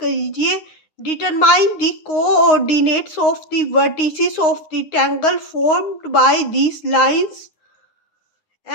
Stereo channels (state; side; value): late; right; 9.6 ms